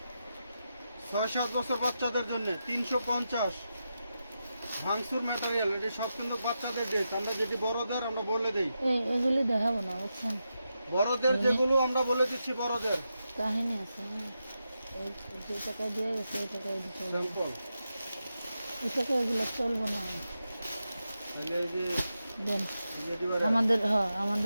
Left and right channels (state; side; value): inverted; both; correlation -0.88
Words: ছয় 7 বছর বাচ্চাদের জন্য 350 ভাঙচুর ম্যাটেরিয়াল। এটা সব কিন্তু বাচ্চাদের ড্রেস, আমরা যেটি বড়দের আমরা বলে দেই, এগুলি দেখাবো না বুঝছেন, বড়দের যেগুলো আমরা বলে দিচ্ছি বড়দের কাহিনী আছে। হ্যাঁ যে টাকা দিয়ে গেছে ওই টাকা দিতে হবে, স্যাম্পল। এই টাকা এগুলো চলবো না। তাহলে এই যে দেন যেটি বড়- আমাদের, হ্যাঁ